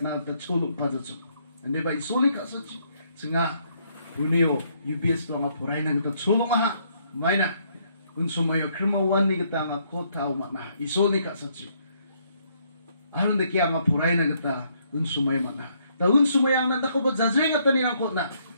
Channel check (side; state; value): both; inverted; correlation -0.70